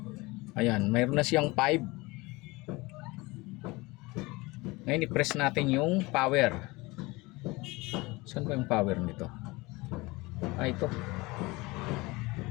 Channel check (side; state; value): right; quieter; 23.0 dB